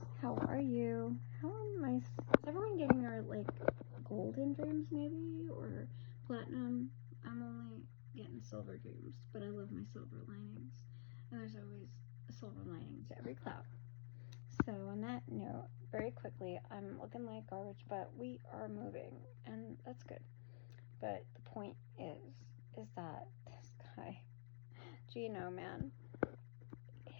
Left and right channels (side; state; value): right; silent; digital silence